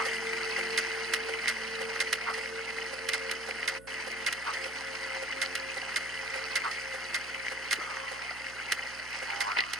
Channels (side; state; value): right; noise; hum, 19 dB below the sound